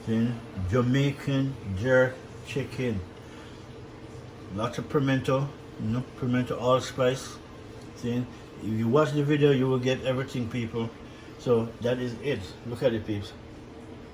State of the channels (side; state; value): both; identical; correlation 1.00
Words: See? Jamaican jerk chicken. Lots of pimento, pimento allspice. See? If you watch the video, you will get everything, people. So that is it. Look at it, peeps.